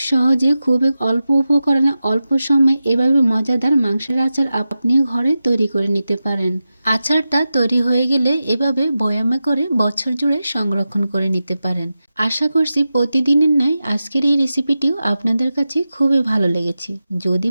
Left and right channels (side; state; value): both; inverted; correlation -0.92